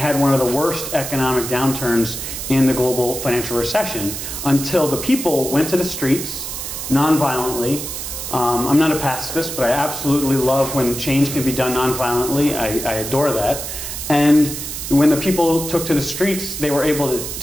one of the worst economic downturns in the global financial recession until the people went to the streets nonviolently. I'm not a pacifist, but I absolutely love when change can be done nonviolently. I adore that. And when the people took to the streets, they were able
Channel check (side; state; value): right; noise; hiss, 6 dB below the sound